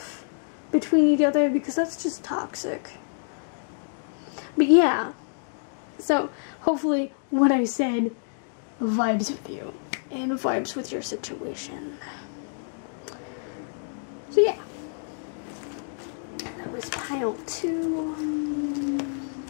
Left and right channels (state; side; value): silent; right; digital silence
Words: between each other, because that's just toxic. But yeah, so hopefully what I said vibes with you and vibes with your situation. So yeah, that was pile 2.